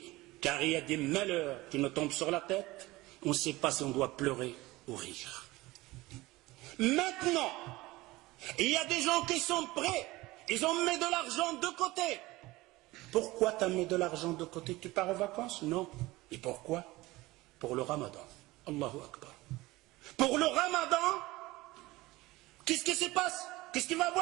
car il y a des malheurs qui nous tombent sur la tête, on ne sait pas si on doit pleurer ou rire. Maintenant, il y a des gens qui sont prêts, ils ont mis de l'argent de côté. Pourquoi tu as mis de l'argent de côté? Tu pars en vacances? Non. Et pourquoi? Pour le ramadan. Allahu Akbar. Pour le ramadan, qu'est-ce qui se passe? Qu'est-ce qu'il va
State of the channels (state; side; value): quieter; left; 19.8 dB